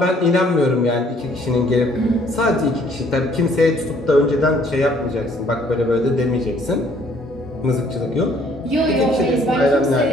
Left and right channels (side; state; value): both; normal; correlation 0.61